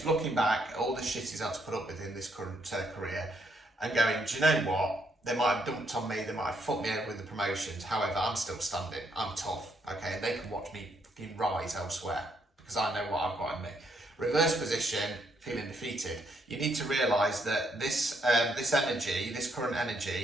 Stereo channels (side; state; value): both; normal; correlation 0.74